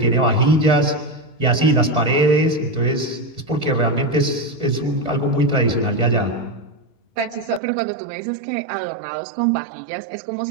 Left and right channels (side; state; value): left; drops out; at 7.6 s